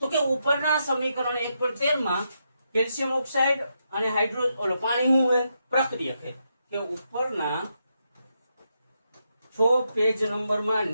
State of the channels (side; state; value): both; inverted; correlation -0.82